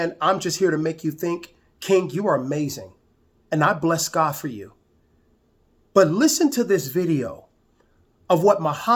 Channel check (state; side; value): identical; both; correlation 1.00